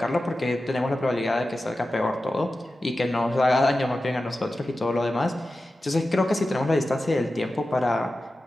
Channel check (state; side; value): normal; both; correlation 0.93